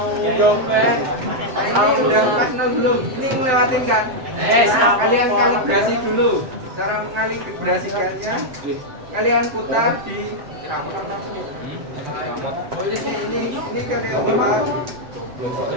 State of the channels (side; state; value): left; late; 7.8 ms